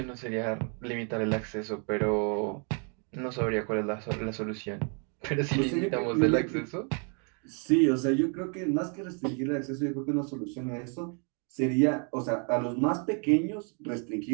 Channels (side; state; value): left; quieter; 38.8 dB